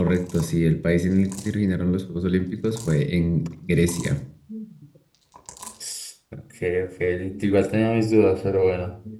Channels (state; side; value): identical; both; correlation 1.00